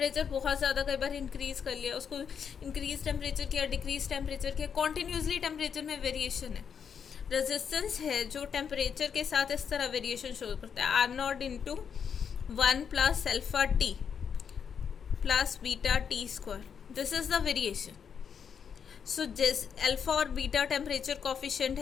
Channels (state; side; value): quieter; right; 7.2 dB